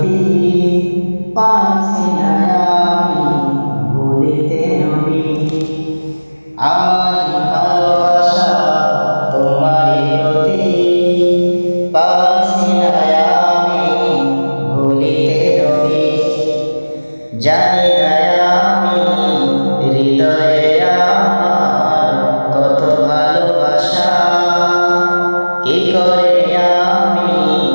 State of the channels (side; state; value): both; inverted; correlation -1.00